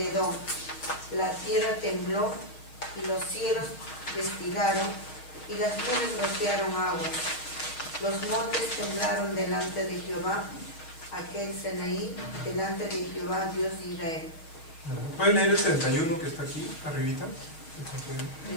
Edom, la tierra tembló y los cielos destilaron y las nubes rociaron aguas. Los montes temblaron delante de Jehová, aquel Sinaí, delante de Jehová, Dios de Israel. ¿Pueden leer el 31 que está aquí, arribita?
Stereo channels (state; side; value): late; right; 6.3 ms